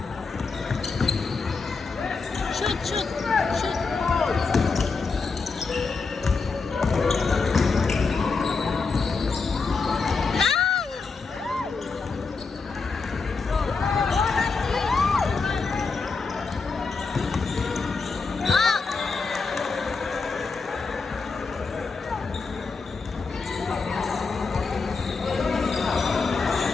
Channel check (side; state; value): right; quieter; 4.5 dB